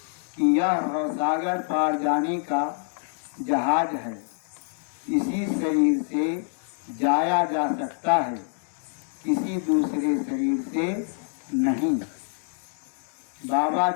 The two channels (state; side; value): silent; right; 61 dB below the other